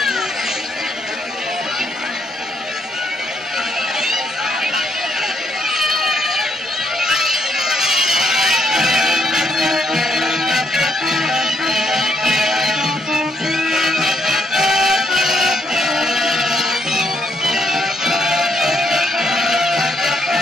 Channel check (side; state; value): both; normal; correlation 0.73